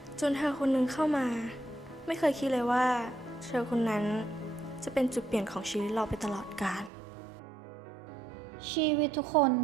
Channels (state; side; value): drops out; left; at 6.9 s